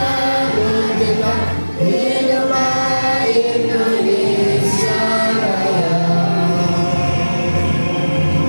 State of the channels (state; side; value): inverted; both; correlation -1.00